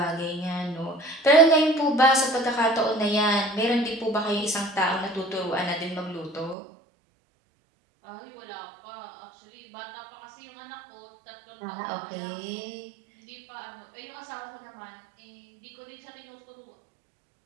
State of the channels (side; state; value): left; drops out; at 6.6 s